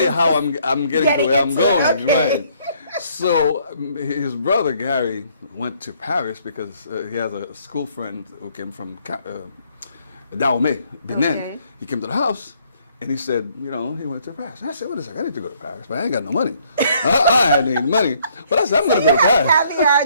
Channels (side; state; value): both; inverted; correlation -0.66